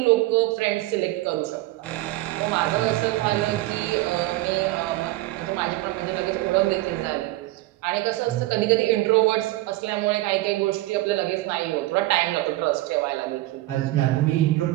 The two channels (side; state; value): left; quieter; 18.0 dB